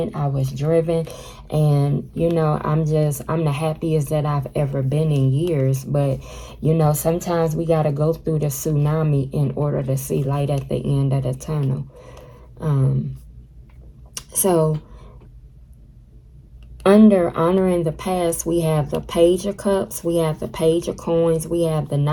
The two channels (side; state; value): both; identical; correlation 1.00